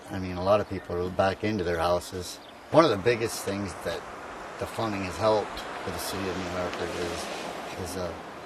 I mean, a lot of people are back into their houses. One of the biggest things that the funding has helped for the city of New Hartford is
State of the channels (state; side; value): identical; both; correlation 1.00